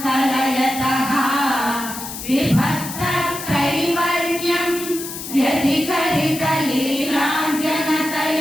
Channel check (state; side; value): noise; left; hiss, 9 dB below the sound